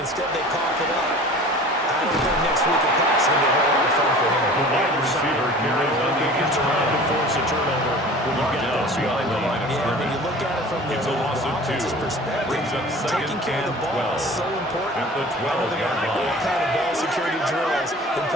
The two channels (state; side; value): normal; both; correlation 0.43